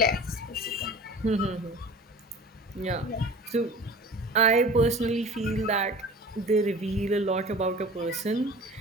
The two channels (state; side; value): normal; both; correlation 0.41